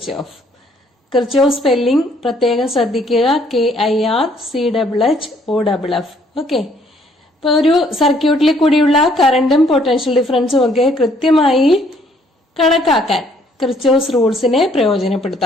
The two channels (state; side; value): normal; both; correlation 0.64